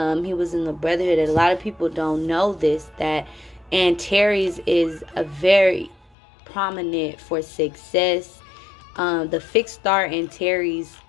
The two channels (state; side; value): drops out; right; at 6.1 s